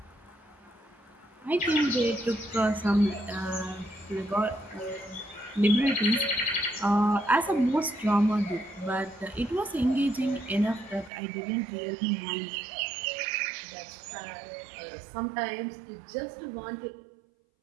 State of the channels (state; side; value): drops out; left; at 11.1 s